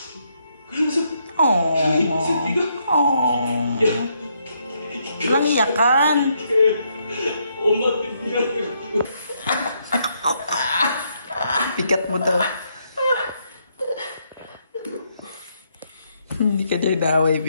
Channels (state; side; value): inverted; both; correlation -0.75